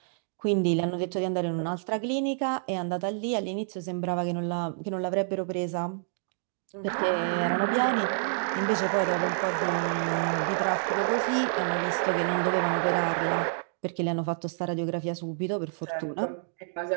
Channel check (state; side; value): silent; left; digital silence